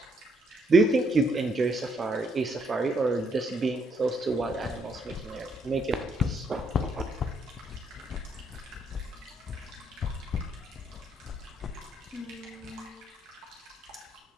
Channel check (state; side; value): normal; both; correlation 0.72